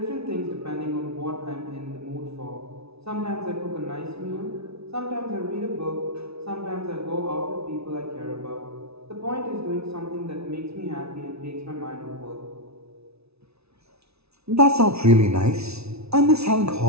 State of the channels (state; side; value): late; left; 0.80 ms